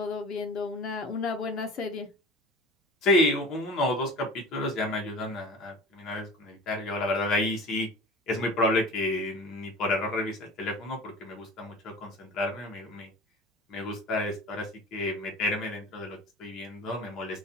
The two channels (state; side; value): normal; both; correlation 0.38